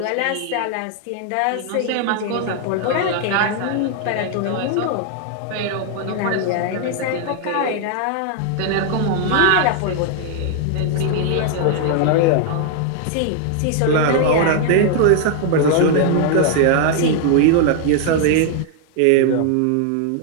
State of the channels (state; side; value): different; both; correlation 0.00